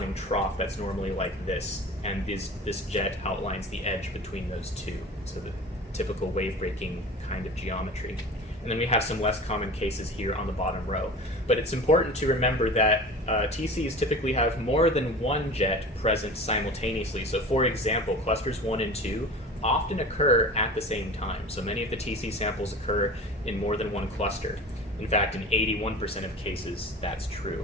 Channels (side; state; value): both; normal; correlation 0.37